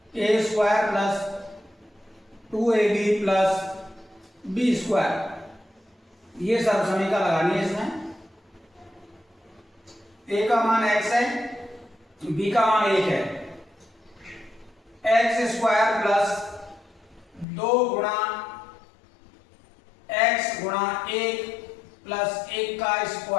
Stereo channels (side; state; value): right; drops out; at 17.4 s